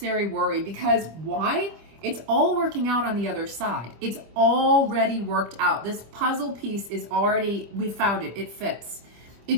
worry, because why? It's all working out on the other side. It's already worked out. This puzzle piece is already, we found it, it fits.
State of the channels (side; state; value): left; late; 25 ms